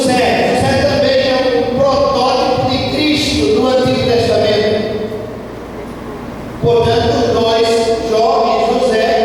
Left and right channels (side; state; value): both; identical; correlation 1.00